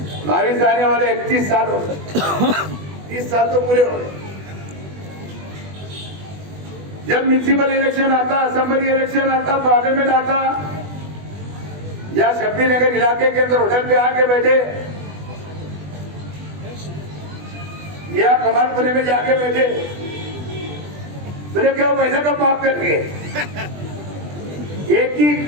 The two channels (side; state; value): left; late; 20 ms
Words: 22 आने वाले 31 साल हो गए, 30 साल तो पूरे हो गए। जब म्यूनिसिपल इलेक्शन आता, असेंबली इलेक्शन आता, पार्लियामेंट आता, या शब्बी नगर इलाके के अंदर होटल पे आके बैठे या कमालपुरे में जाके बैठे, बोले क्या पैसा का माफ करके एक ही